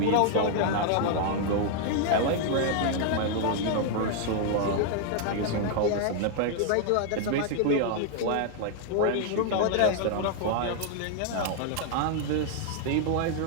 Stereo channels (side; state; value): both; different; correlation 0.00